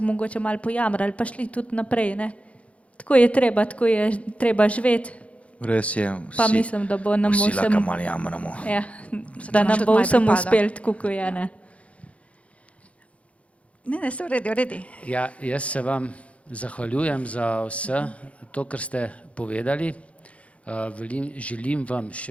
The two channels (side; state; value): right; late; 0.064 ms